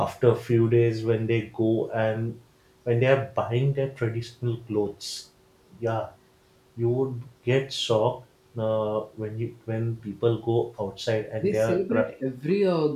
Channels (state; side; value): identical; both; correlation 1.00